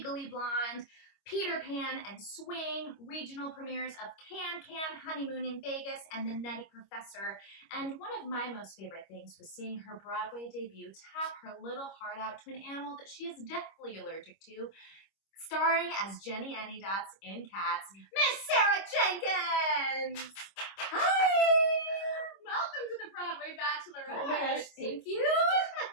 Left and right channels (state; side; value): late; right; 25 ms